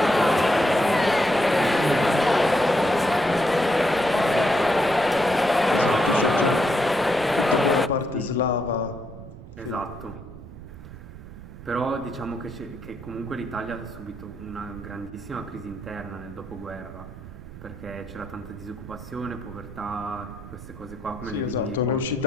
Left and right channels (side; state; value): right; noise; rumble, 15 dB below the sound